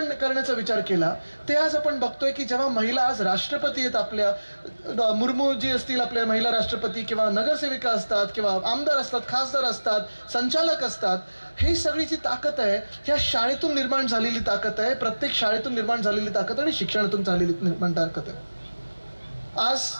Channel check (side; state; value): both; inverted; correlation -1.00